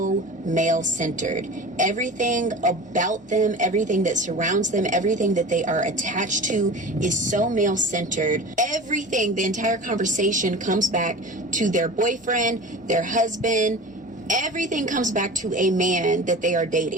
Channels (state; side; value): normal; both; correlation 0.35